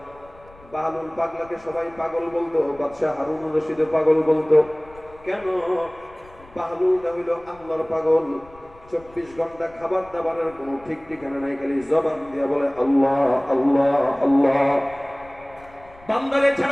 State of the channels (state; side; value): noise; left; rumble, 25 dB below the sound